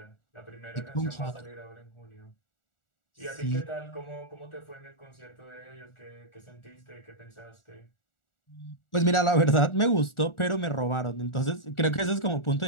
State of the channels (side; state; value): right; late; 1.4 ms